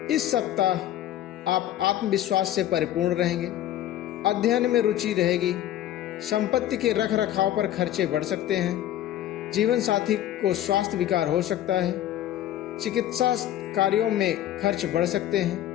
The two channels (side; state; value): right; quieter; 12.4 dB